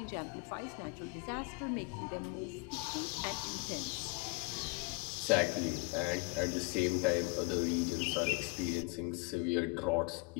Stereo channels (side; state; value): right; quieter; 27.7 dB